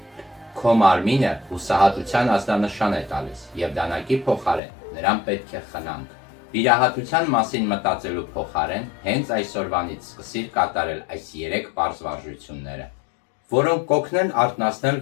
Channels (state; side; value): drops out; right; at 4.6 s